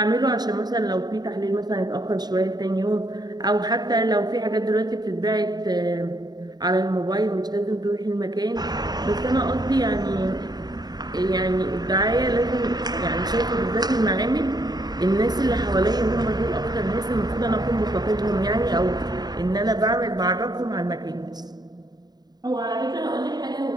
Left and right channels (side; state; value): left; late; 0.20 ms